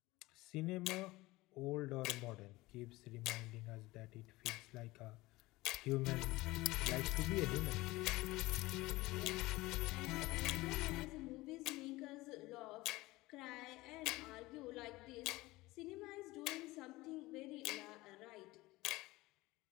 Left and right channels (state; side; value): quieter; right; 20.0 dB